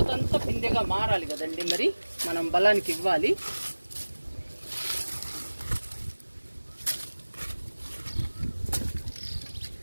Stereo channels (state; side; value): inverted; both; correlation -1.00